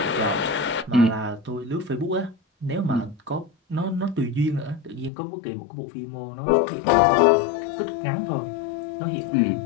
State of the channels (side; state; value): right; drops out; at 5.1 s